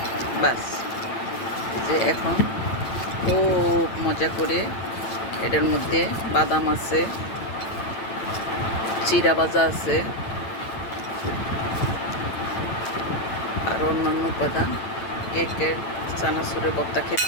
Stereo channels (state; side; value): late; right; 8.9 ms